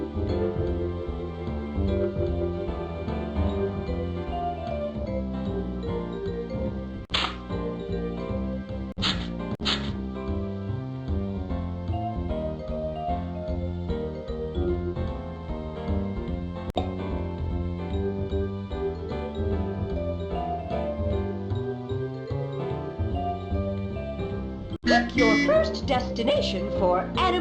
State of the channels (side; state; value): both; identical; correlation 1.00